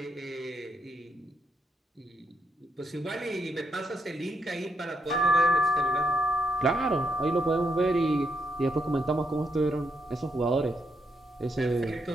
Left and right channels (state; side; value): normal; both; correlation 0.78